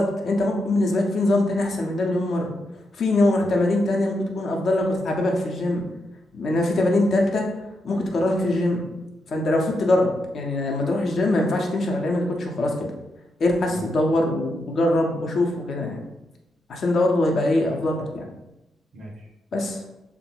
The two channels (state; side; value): normal; both; correlation 0.83